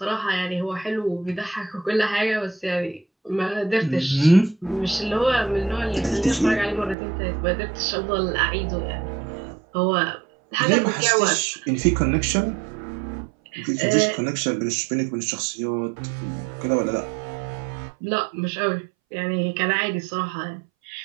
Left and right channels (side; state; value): left; drops out; at 7.0 s